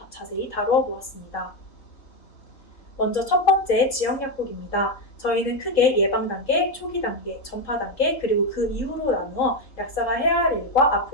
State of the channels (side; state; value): right; late; 3.7 ms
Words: 자세히 다루어 보았습니다. 먼저 첫 번째 지역약국입니다. 저희는 크게 예방 단계, 초기 단계, 전파 단계, 그리고 그 이후로 나누어 약사가 해야 할 일과